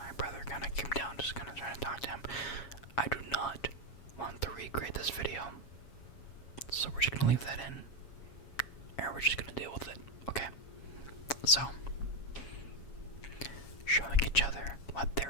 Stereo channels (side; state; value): right; late; 7.2 ms